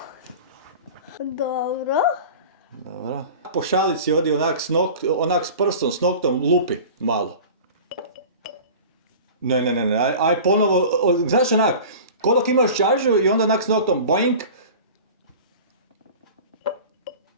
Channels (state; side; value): inverted; both; correlation -0.37